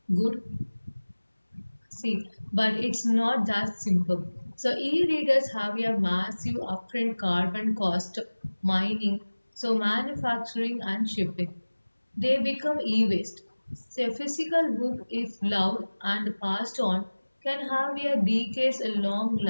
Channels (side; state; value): both; inverted; correlation -1.00